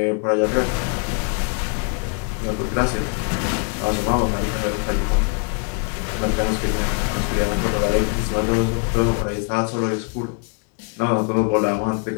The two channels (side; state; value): right; quieter; 38.5 dB